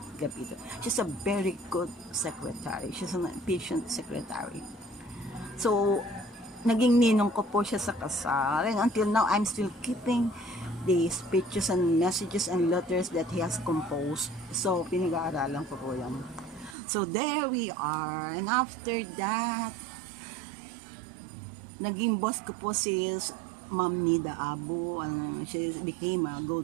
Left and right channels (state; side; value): drops out; left; at 16.8 s